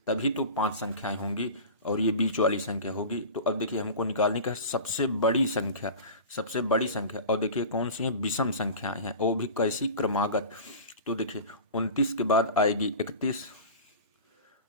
तभी तो 5 संख्याएं होंगी और ये बीच वाली संख्या होगी। तो अब देखिए हमको निकालने का सबसे बड़ी संख्या, सबसे बड़ी संख्या। और देखिए कौन सी है? विषम संख्याएं हैं, वो भी कैसी? क्रमागत। तो देखिए 29 के बाद आएगी 31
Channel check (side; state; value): both; inverted; correlation -0.34